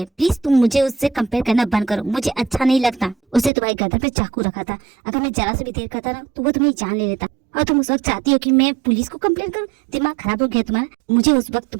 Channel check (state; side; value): drops out; left; at 3.5 s